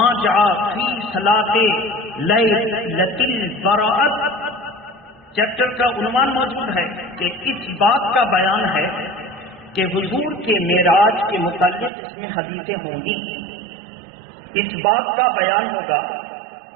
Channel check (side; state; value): left; drops out; at 11.9 s